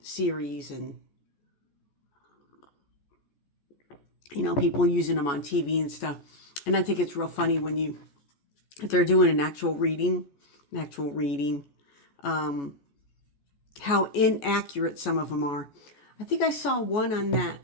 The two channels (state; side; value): late; right; 14 ms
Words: series, and you know, people using them on TV and stuff. And I think it's real funny when if they're doing an actual reading, how inaccurate some of them are. I think I saw one on that